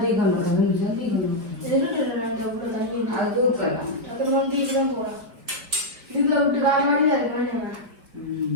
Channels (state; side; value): late; left; 4.6 ms